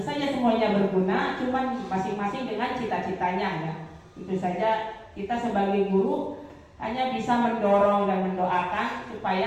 saja semuanya berguna, cuman masing-masing dengan cita-citanya ya. Tentu saja kita sebagai guru hanya bisa mendorong dan mendoakan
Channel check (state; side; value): identical; both; correlation 1.00